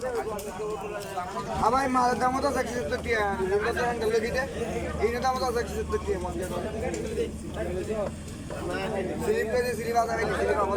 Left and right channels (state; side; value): identical; both; correlation 1.00